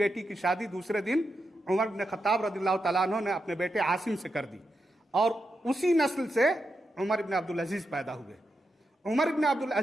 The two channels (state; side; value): normal; both; correlation 0.86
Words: की शादी दूसरे दिन उमर बिन खत्ताब रज़ियल्लाहु ताला अन्हु ने अपने बेटे आसिम से कर दी और उसी नस्ल से उमर इब्न अब्दुल अजीज पैदा हुए। उमर इब्न अब्दुल